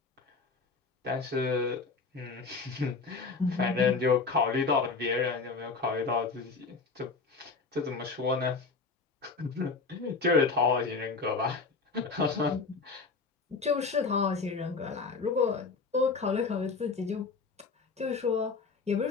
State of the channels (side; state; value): right; quieter; 4.4 dB